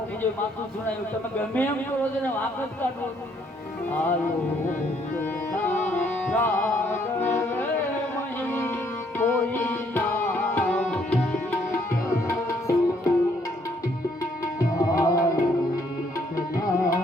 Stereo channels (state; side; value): normal; both; correlation 0.68